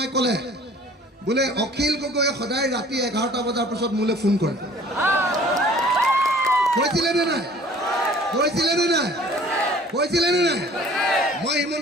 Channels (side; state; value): both; normal; correlation 0.51